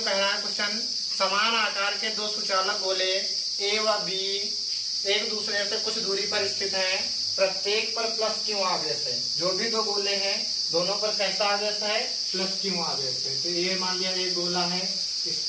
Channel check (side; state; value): both; identical; correlation 1.00